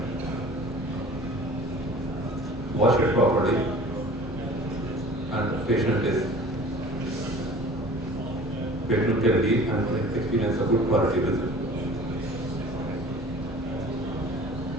Wash it properly and patient can leave and experience a good quality visit.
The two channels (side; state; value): both; normal; correlation 0.45